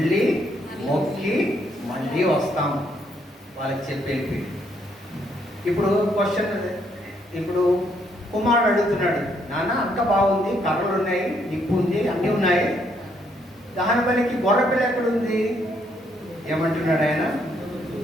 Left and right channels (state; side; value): normal; both; correlation 0.72